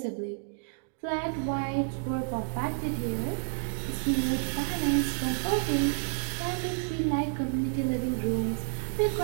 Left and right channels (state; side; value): silent; left; digital silence